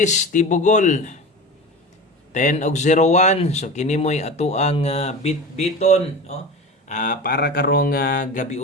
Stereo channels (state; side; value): normal; both; correlation 0.31